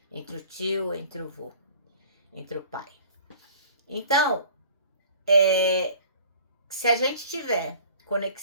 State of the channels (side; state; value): both; inverted; correlation -0.48